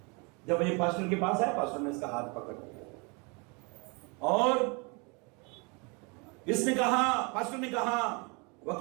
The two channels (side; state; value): left; quieter; 30.9 dB